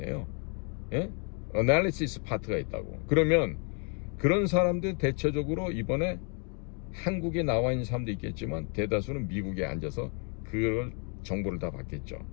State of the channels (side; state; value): right; quieter; 38.8 dB